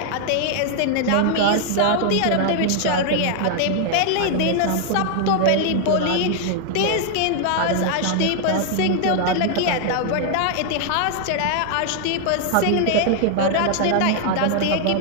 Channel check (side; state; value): both; different; correlation 0.00